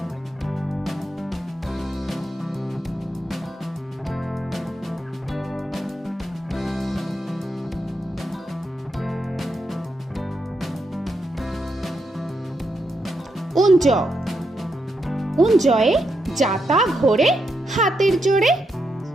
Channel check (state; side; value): normal; both; correlation 0.82